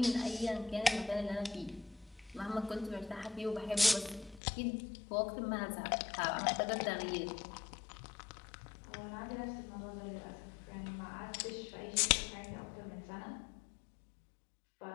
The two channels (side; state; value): right; drops out; at 4.4 s